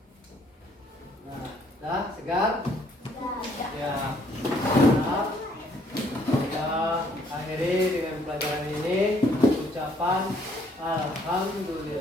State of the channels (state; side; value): normal; both; correlation 0.65